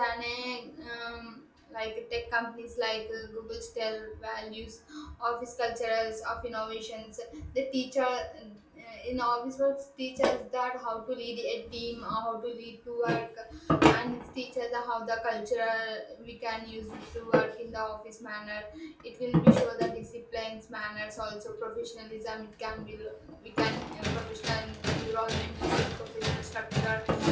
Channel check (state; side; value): identical; both; correlation 1.00